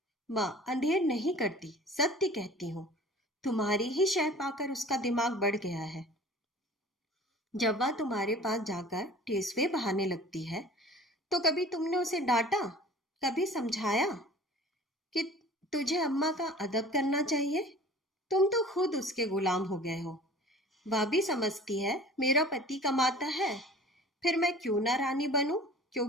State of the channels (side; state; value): both; normal; correlation 0.44